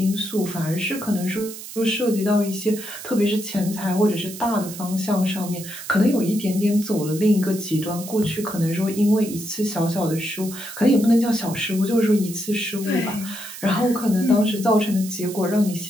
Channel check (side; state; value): right; noise; hiss, 12 dB below the sound